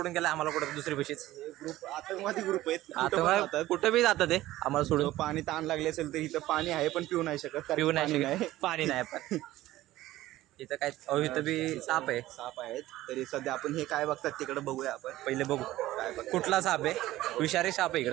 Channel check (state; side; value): quieter; left; 15.9 dB